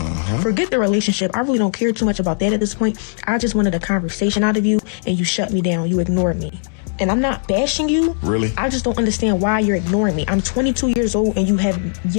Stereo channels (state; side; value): silent; right; digital silence